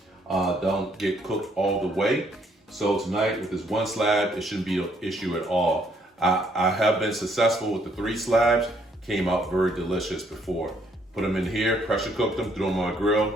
don't get cooked all the way. So tonight with this 1 slab, it shouldn't be an issue at all. I have been successful with the 3 slabs, came out very delicious before. Put them in here, pressure cook them, throw them on a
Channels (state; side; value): normal; both; correlation 0.68